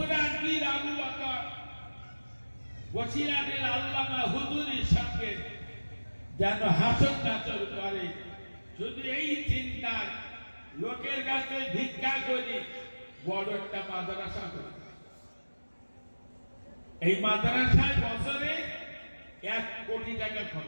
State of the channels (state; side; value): inverted; both; correlation -1.00